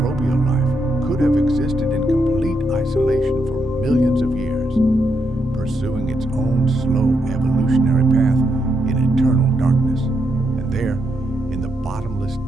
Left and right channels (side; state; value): both; normal; correlation 0.80